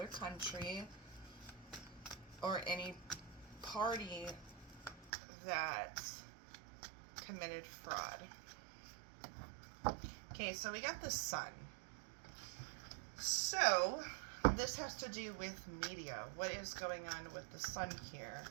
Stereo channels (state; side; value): drops out; left; at 5.1 s